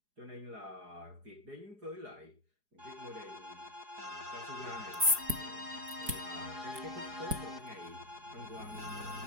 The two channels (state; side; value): late; left; 4.8 ms